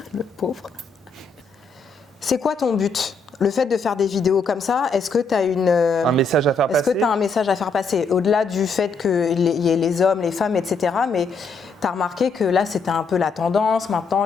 le pauvre. C'est quoi ton but? Le fait de faire des vidéos comme ça, est-ce que tu as un message à faire passer? Est-ce que tu as un message à faire passer? Au-delà du fait qu'il y ait les hommes, les femmes, etc. Mais tu as remarqué que là, c'était un peu la tendance, maintenant,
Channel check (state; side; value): quieter; right; 4.1 dB